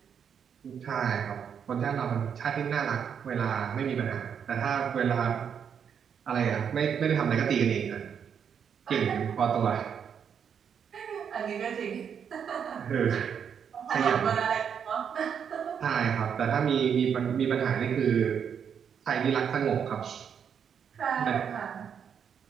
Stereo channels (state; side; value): quieter; left; 7.6 dB